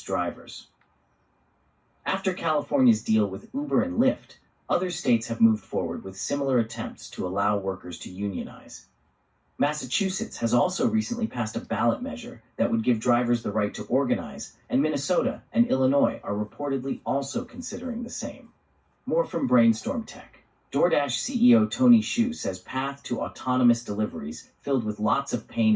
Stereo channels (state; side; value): identical; both; correlation 1.00